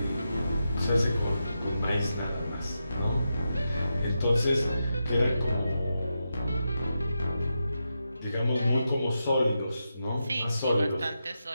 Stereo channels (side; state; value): both; inverted; correlation -0.87